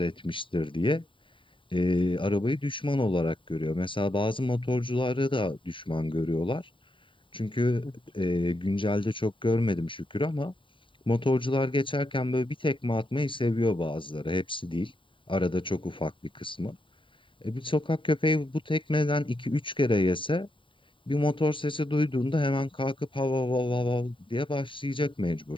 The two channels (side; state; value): right; late; 0.25 ms